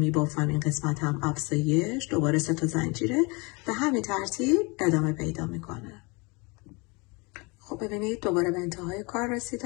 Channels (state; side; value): quieter; right; 28.2 dB